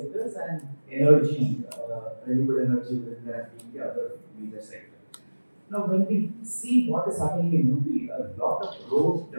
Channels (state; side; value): inverted; both; correlation -1.00